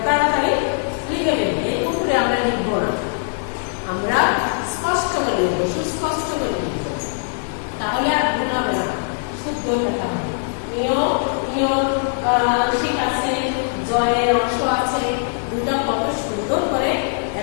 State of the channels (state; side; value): silent; right; 60 dB below the other